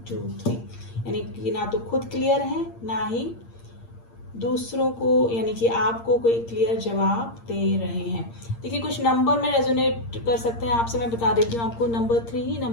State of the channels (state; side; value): late; right; 8.7 ms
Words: 2 3, यानी कि ना तो खुद क्लियर है, ना ही दूसरों को यानी कि आपको कोई क्लियर जवाब दे रहे हैं। देखिए कुछ नंबर में रेजोनेट कर सकते हैं आपसे, मैं बता देती हूँ आपको। Number 3,